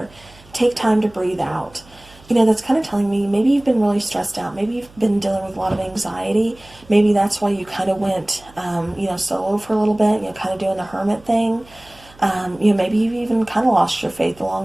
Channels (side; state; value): right; noise; hum, 25 dB below the sound